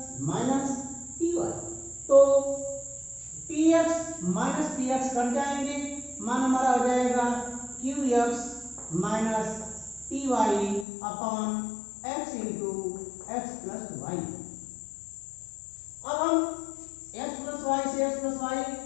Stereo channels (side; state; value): right; drops out; at 10.9 s